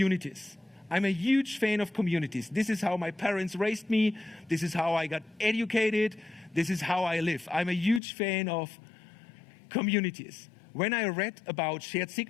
I'm a huge fan of communities. This is how my parents raised me. This is how I got educated. This is how I live. I'm a huge fan of communities. When I read about shared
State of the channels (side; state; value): right; drops out; at 8.0 s